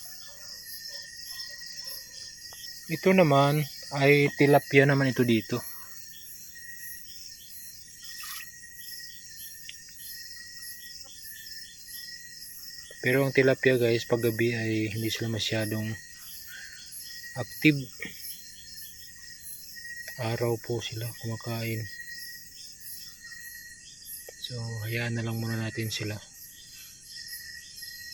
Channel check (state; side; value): noise; left; rumble, 26 dB below the sound